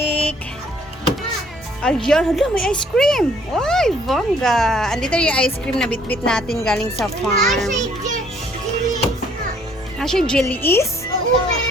Ayan, hala, may ice cream. Uy, Vongga. Andito yung ice cream na bitbit natin galing sa farm. Siya jelly is? Oo,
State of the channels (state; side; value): normal; both; correlation 0.62